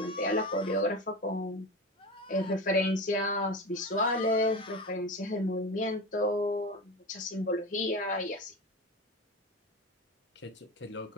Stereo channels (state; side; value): normal; both; correlation 0.26